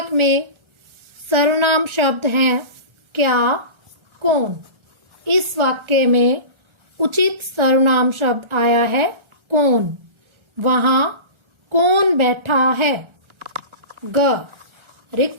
में सर्वनाम शब्द हैं क्या, कौन। इस वाक्य में उचित सर्वनाम शब्द आया है कौन। वहाँ कौन बैठा है। ग,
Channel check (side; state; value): left; late; 1.4 ms